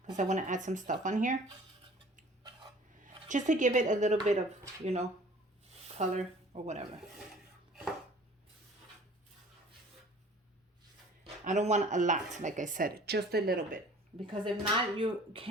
because I wanna add some stuff on here. Just to give it a little bit of, you know, color or whatever. I don't want a lot, like I said, just a little bit. Because if not, you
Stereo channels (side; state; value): both; normal; correlation 0.49